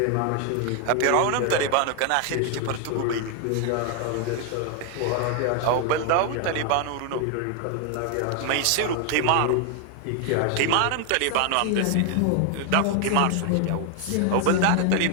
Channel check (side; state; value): both; different; correlation 0.00